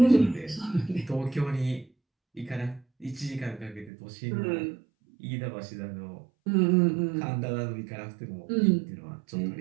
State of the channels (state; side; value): drops out; left; at 3.9 s